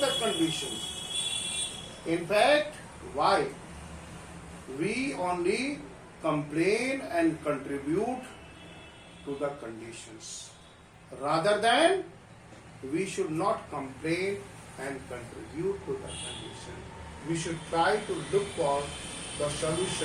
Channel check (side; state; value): both; identical; correlation 1.00